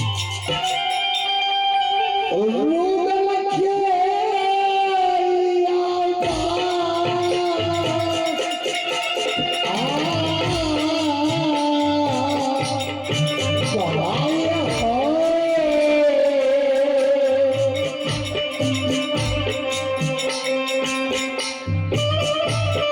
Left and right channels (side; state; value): both; identical; correlation 1.00